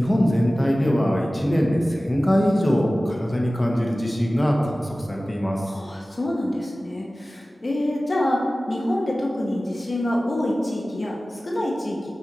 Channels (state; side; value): normal; both; correlation 0.97